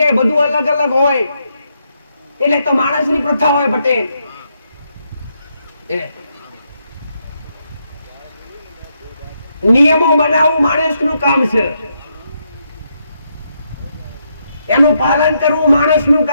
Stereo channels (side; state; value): both; inverted; correlation -0.79